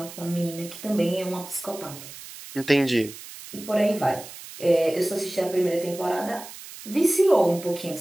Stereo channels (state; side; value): noise; right; hiss, 15 dB below the sound